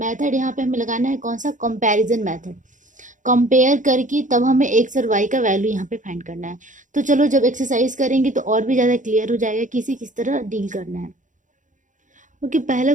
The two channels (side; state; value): left; late; 0.37 ms